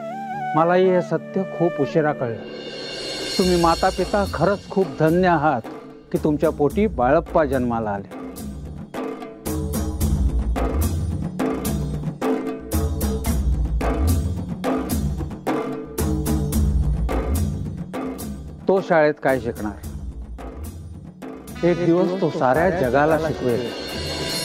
मलाही हे सत्य खूप उशिरा कळलं. तुम्ही माता पिता खरंच खूप धन्य आहात की तुमच्या पोटी बाळप्पा जन्माला आले. तो शाळेत काय शिकणार? एक दिवस तो साऱ्या जगाला शिकवेल.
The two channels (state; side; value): identical; both; correlation 1.00